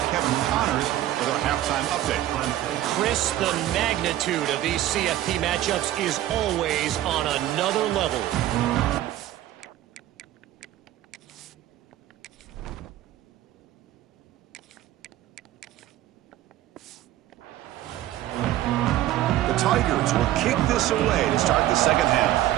Kevin Connors with our halftime update. Chris, the magnitude of these CFP matchups is always on another level. The Tigers will kick this away to start the second half.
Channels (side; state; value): left; quieter; 13.9 dB